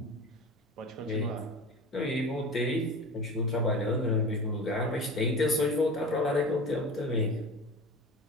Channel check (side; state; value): both; normal; correlation 0.33